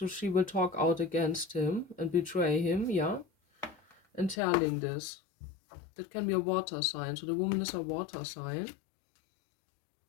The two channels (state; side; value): drops out; right; at 4.4 s